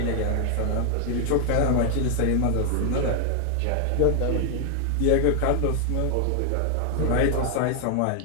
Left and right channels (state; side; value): different; both; correlation 0.00